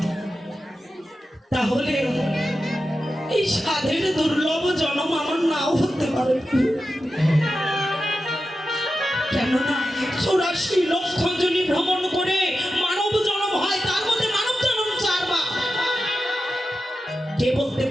তাহলে এই সাধের দুর্লভ জন্ম আমার নাও হতে পারে কেননা 84 লক্ষ জনি ভ্রমণ করে মানব জন্ম হয় তার মধ্যে মানব জন্ম 4 বার কে বলতে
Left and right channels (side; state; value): both; normal; correlation 0.91